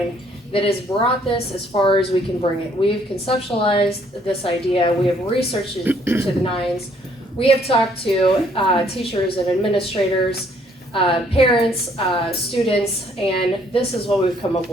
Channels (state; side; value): normal; both; correlation 0.65